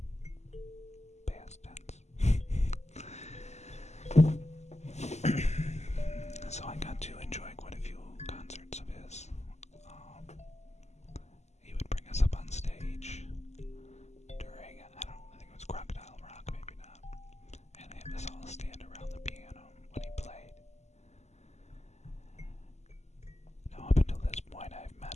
Past tense. So I got to enjoy quite a few concerts of his. He would bring us up on stage during, I think it was Crocodile Rock, maybe not, and have us all stand around the piano when he played. Now, up until this point, I've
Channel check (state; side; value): late; right; 0.33 ms